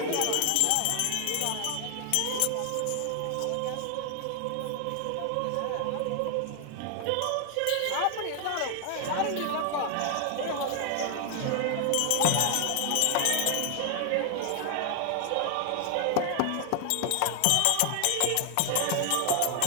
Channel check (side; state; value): both; different; correlation 0.00